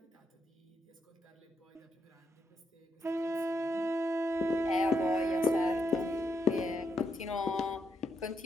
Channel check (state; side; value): normal; both; correlation 0.79